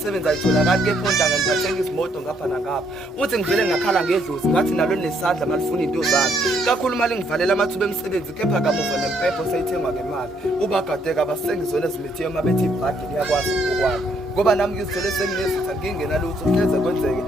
ayitholakali kephondanga ngiphathenga izimoto ngapha nangapha. Uthi ngivele ngakhala ngedlozi ngathi nalo nesandla malifuna into zami. Kakhulu mali ngivalela amathuba emisebenzi kepha kamuva nempepho sayithengwa ngemali. Ubagadeka abasengizona ezimithiyo mabethi ibhadi liyakwazi ukwakho. Ngoba nami ngizithole senginezitha ngingena lutho kuhleze kwenzeke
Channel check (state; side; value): normal; both; correlation 0.70